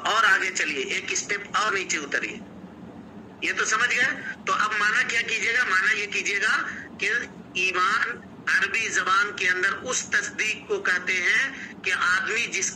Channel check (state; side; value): identical; both; correlation 1.00